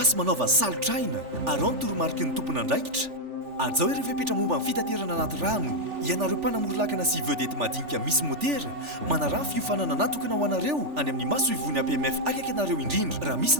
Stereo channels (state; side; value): late; left; 3.4 ms